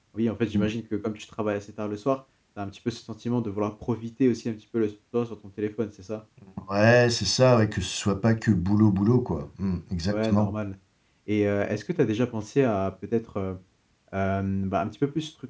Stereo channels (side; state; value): both; identical; correlation 1.00